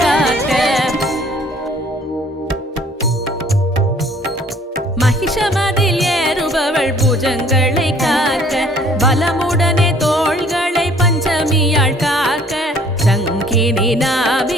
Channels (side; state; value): both; normal; correlation 0.56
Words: காக்க மகிஷமதில் ஏறுபவள் பூஜங்களை காக்க பலமுடனே தோள்களை பஞ்சமியாள் காக்க சங்கினி